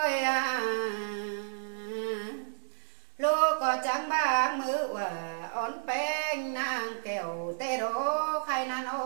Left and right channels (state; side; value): silent; left; digital silence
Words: à lô có trắng bang mưa hòa ón beng nàng kẹo tê đô khai nan ô